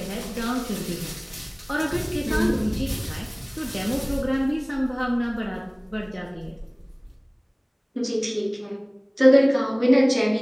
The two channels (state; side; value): identical; both; correlation 1.00